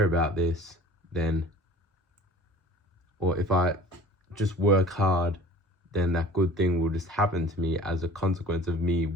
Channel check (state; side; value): normal; both; correlation 0.45